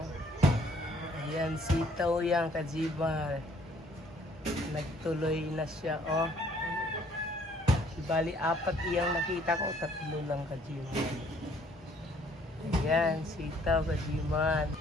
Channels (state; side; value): normal; both; correlation 0.61